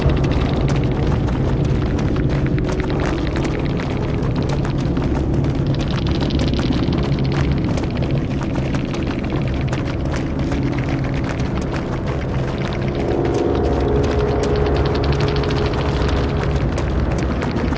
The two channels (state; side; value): identical; both; correlation 1.00